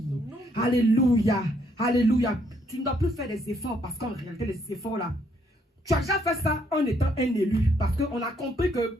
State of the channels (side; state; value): both; normal; correlation 0.70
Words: Alléluia. Alléluia. Tu ne dois plus faire des efforts parce qu'en réalité, les efforts là, Tu as déjà fait ça en étant un élu. Parce qu'on a compris que